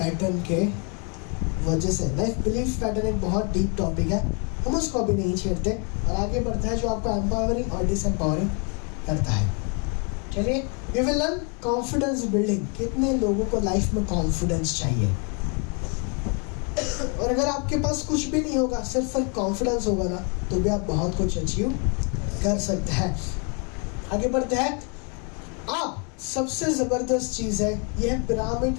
के वजह से। लाइफ बिलीफ पैटर्न एक बहुत डीप टॉपिक है, हम उसको अभी नहीं छेड़ते और आगे बढ़ता है जो आपको एम्पावरिंग और डिसएम्पावरिंग करता है। चलिए, we will learn confidence building. कितने लोगों को लाइफ में कॉन्फिडेंस चाहिए? और अगर आपके पास कुछ भी नहीं होगा, सिर्फ कॉन्फिडेंस होगा ना, तो भी आप बहुत कुछ अचीव कर सकते हैं। आगे बढ़ते हैं। आप सबसे ज़बरदस्त चीज़ है यह पिरामिड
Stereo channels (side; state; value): right; quieter; 36.6 dB